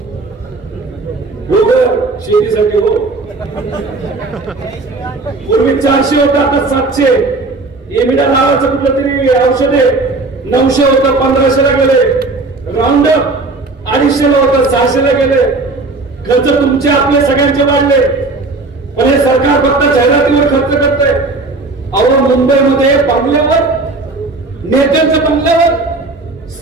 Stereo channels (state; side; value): quieter; left; 3.4 dB